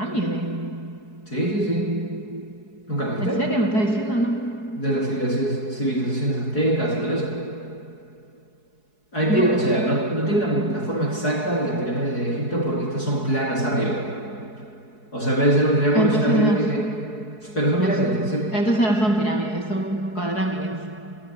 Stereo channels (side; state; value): right; late; 4.7 ms